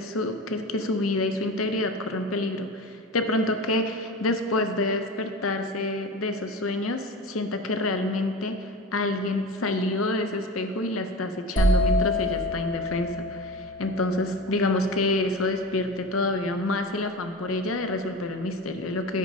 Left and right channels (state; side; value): normal; both; correlation 0.31